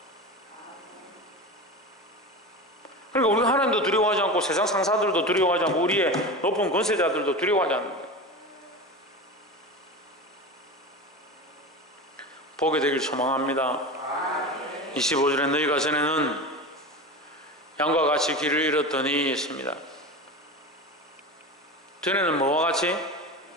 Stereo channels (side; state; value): both; normal; correlation 0.27